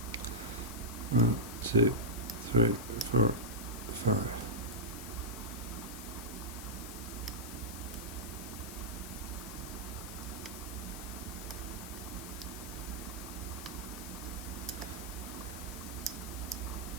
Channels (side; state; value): left; noise; hiss, 11 dB below the sound